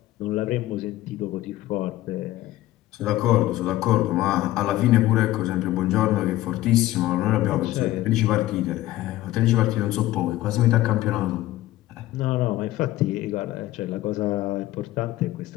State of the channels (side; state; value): right; quieter; 15.7 dB